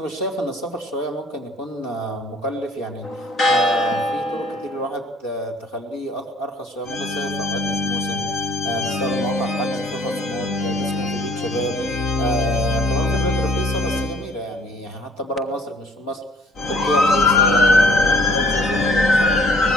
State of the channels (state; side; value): normal; both; correlation 0.57